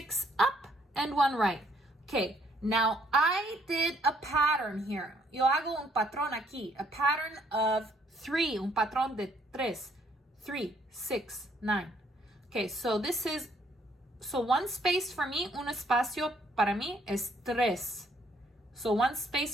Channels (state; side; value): normal; both; correlation 0.67